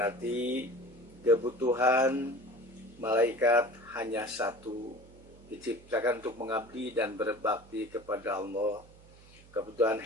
kebutuhan malaikat hanya satu, diciptakan untuk mengabdi dan berbakti kepada Allah. Kebutuhan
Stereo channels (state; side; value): noise; right; hum, 23 dB below the sound